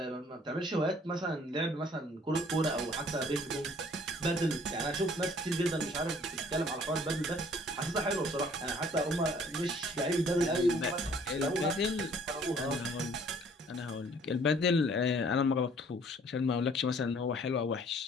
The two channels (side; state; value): both; normal; correlation 0.57